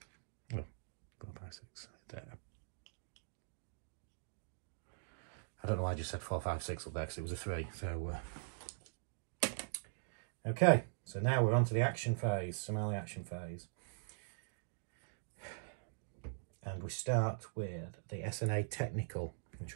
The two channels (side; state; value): left; silent; digital silence